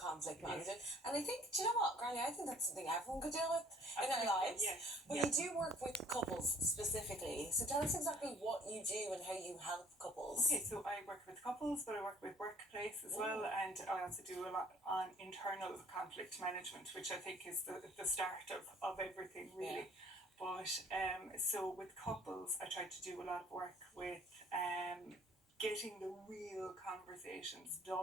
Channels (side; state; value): both; normal; correlation 0.55